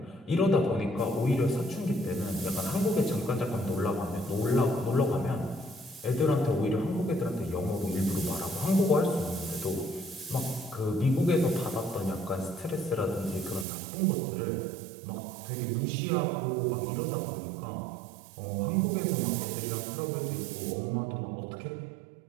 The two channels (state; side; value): drops out; left; at 13.7 s